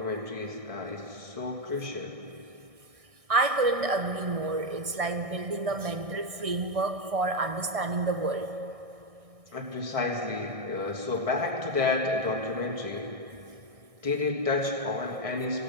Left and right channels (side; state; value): left; late; 1.6 ms